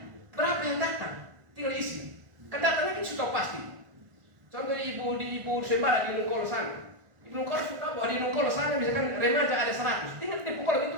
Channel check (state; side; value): late; left; 1.4 ms